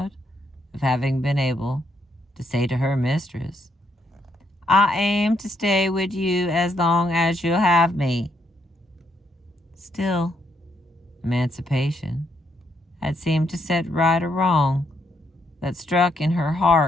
of having been able to say to her mistress, "I aim to stay with you as long as you'll have me." Still, emancipation had seemed to set right a wrong that struck in her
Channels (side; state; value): both; normal; correlation 0.75